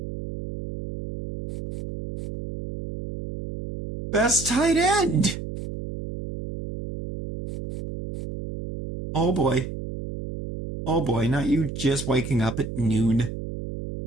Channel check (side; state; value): right; noise; hum, 8 dB below the sound